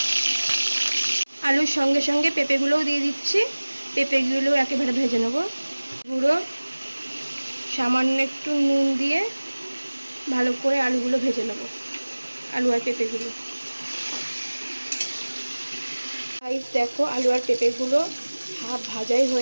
আলুর সঙ্গে সঙ্গে পেঁপেগুলোও দিয়ে দিচ্ছি, পেঁপেগুলো একেবারে ভেজে নেবো। গুঁড়ো সামান্য একটু নুন দিয়ে ভালো করে আলুগুলো ভেজে নেব, আলু আর পেঁপেগুলো। দেখো আলু আর পেঁপেগুলো হাফ ভাজাই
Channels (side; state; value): both; inverted; correlation -1.00